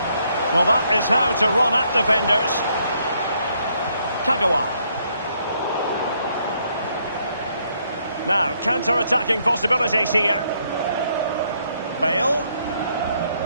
Well, that is how to run at defenders. Kagawa. Now, counter-attacking possibilities here. Bale.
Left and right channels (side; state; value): both; inverted; correlation -0.72